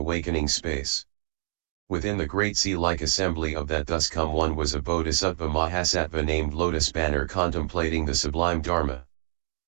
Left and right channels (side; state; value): left; silent; digital silence